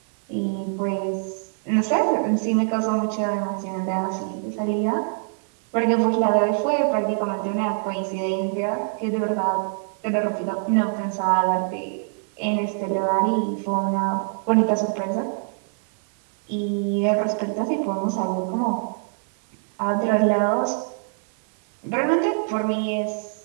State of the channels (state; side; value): silent; left; 59 dB below the other